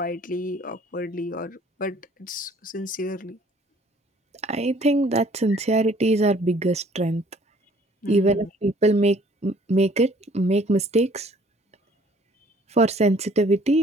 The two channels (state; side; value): normal; both; correlation 0.57